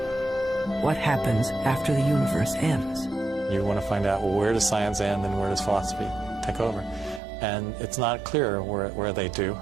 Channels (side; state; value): left; drops out; at 7.2 s